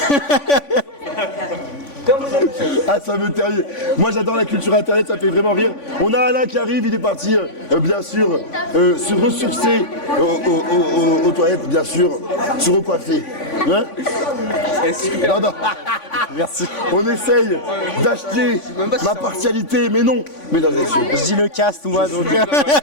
Ah, ça me termine. Moi, j'adore la culture internet, ça me fait vraiment rire. On a Alain qui arrive, il est parti, bien sûr, se ressourcer aux toilettes, bien sûr, se recoiffer. Hein? Non. Merci. On essaye d'acheter ma partialité, mais non, mesdames et messieurs. Je dis le cast, moi, donc.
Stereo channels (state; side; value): late; right; 3.5 ms